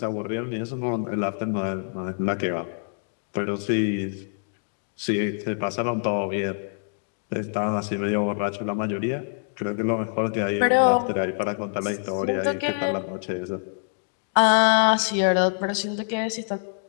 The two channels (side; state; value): right; silent; 61 dB below the other